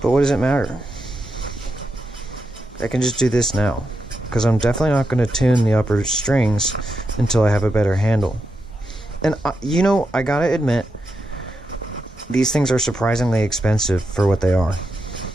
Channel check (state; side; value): normal; both; correlation 0.86